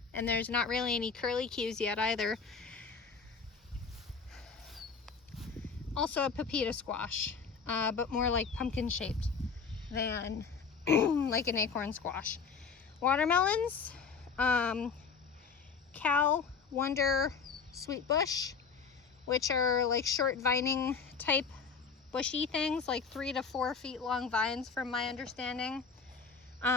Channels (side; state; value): right; quieter; 5.5 dB